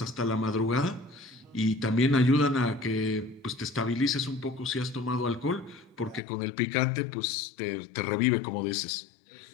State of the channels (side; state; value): right; drops out; at 6.2 s